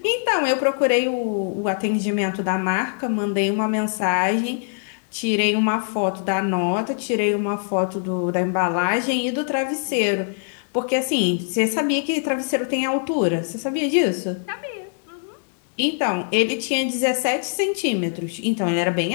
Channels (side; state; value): right; silent; digital silence